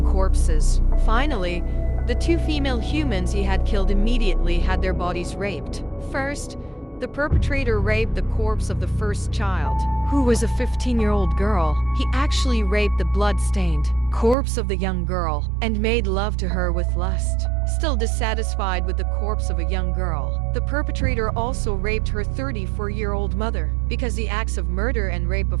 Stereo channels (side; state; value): left; drops out; at 14.4 s